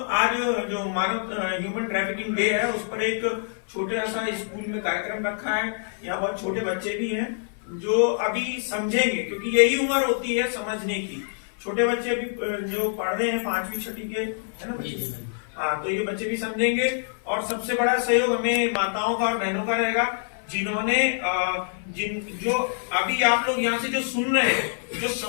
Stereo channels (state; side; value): silent; right; 58 dB below the other